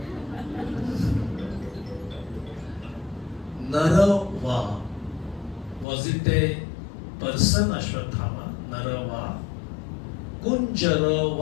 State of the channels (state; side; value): drops out; right; at 5.9 s